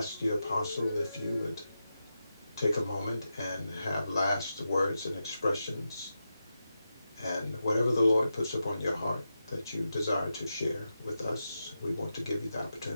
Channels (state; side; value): inverted; both; correlation -0.89